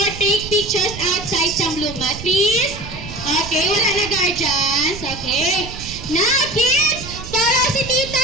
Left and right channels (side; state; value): right; noise; rumble, 12 dB below the sound